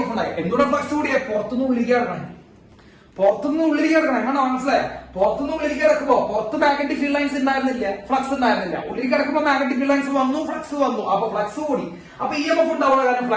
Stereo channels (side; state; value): both; identical; correlation 1.00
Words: ഉണ്ടായത്. എന്തുകൊണ്ടാണ് ഫ്ലക്സ് കൂടിയ? പുറത്തുനിന്ന് ഉള്ളിലേക്ക് കിടക്കണം. എങ്ങനെ മനസ്സിലായ? പുറത്തുനിന്ന് ഉള്ളിലേക്ക് കിടക്കുമ്പോ പുറത്ത് മാഗ്നറ്റിക് ഫീൽഡ് ലൈൻസ് ഉണ്ടായിരുന്നില്ല, ഫ്ലക്സ് ഉണ്ടായിരുന്നില്ല. ഉള്ളിലേക്ക് കിടക്കുമ്പോൾ മാഗ്നറ്റിക് ഫീൽഡ് ലൈൻസ് വന്നു, ഫ്ലക്സ് വന്നു. അപ്പൊ ഫ്ലക്സ് കൂടി. അപ്പൊ EMF ഉണ്ടാവുന്ന കാരണം